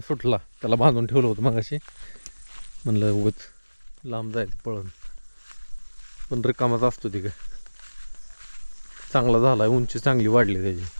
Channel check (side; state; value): both; inverted; correlation -1.00